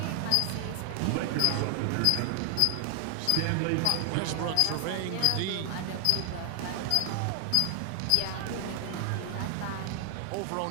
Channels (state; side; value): different; both; correlation 0.00